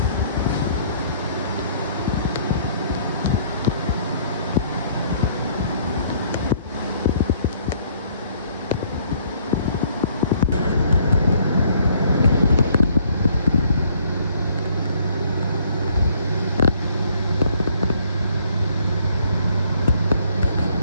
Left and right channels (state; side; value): inverted; both; correlation -0.63